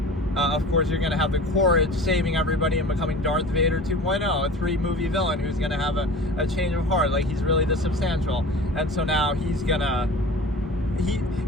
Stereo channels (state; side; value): normal; both; correlation 0.39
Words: of course, you're going to have the Courage saving everybody and becoming Darth Vader 2.0, a 3-movie villain who's going to have a change of heart. Like, he's really this substantial. And so now he's going to,